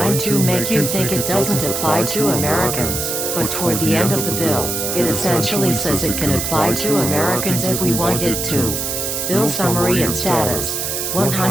to make you think it doesn't apply to Americans. But toward the end of the bill, it essentially says it can apply to Americans if we want it to. Bill summary and status.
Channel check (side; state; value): right; noise; hiss, 2 dB below the sound